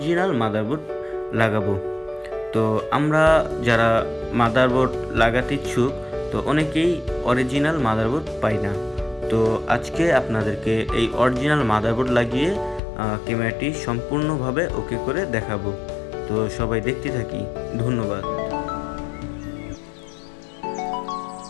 মাদারবোর্ড লাগাবো। তো আমরা যারা মাদারবোর্ড লাগাতে ইচ্ছুক, তো অনেকেই অরিজিনাল মাদারবোর্ড পাই না। তো আজকে আপনাদেরকে এই অরিজিনাল মাদারবোর্ড লাগিয়ে ক্যামেরাটি সম্পূর্ণভাবে ওকে করে দেখাবো। তো সবাই দেখতে থাকি। ধন্যবাদ।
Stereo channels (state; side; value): drops out; right; at 12.8 s